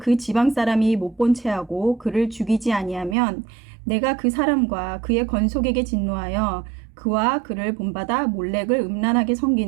지방 사람이 못 본 채하고 그를 죽이지 아니하면 내가 그 사람과 그의 건속에게 진노하여 그와 그를 본받아 몰렉을 음란하게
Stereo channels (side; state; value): left; drops out; at 3.2 s